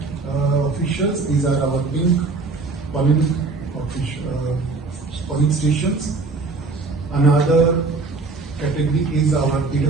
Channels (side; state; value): left; quieter; 3.9 dB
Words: officials. These are our pink polling stations. Another category is our